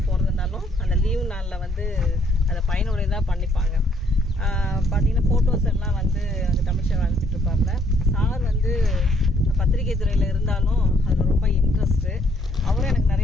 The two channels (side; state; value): both; normal; correlation 0.67